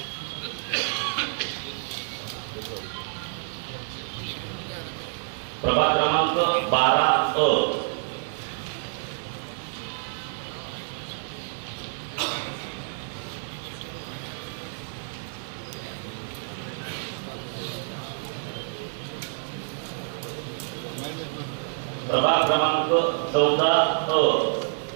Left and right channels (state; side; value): silent; left; digital silence